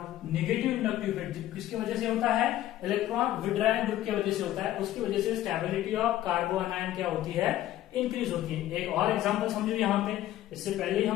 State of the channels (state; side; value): quieter; right; 13.6 dB